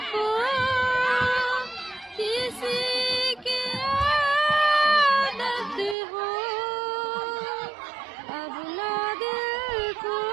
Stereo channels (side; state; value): left; drops out; at 6.0 s